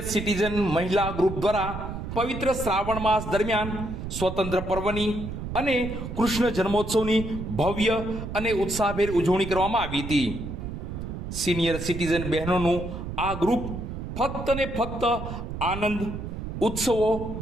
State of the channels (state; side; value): noise; right; rumble, 7 dB below the sound